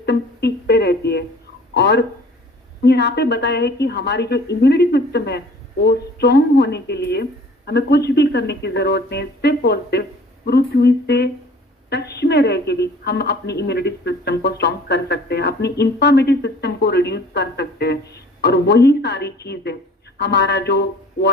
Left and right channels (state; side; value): normal; both; correlation 0.50